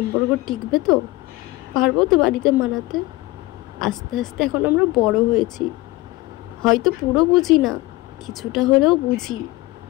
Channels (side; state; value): right; quieter; 19.8 dB